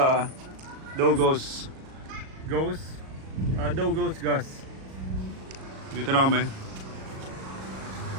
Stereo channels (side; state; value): left; late; 37 ms